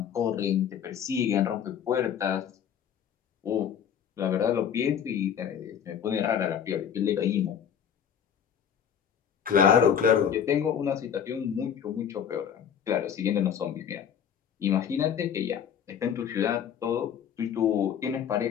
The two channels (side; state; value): right; quieter; 8.3 dB